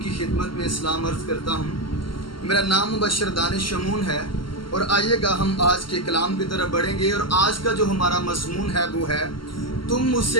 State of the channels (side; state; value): right; late; 0.73 ms